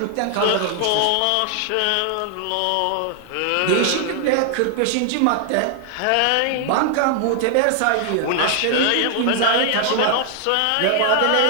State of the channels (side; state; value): both; different; correlation 0.00